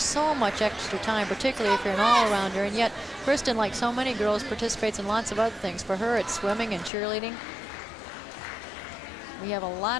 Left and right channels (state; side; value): drops out; right; at 6.9 s